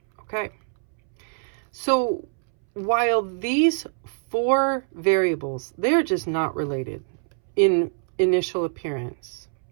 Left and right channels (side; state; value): left; silent; 62 dB below the other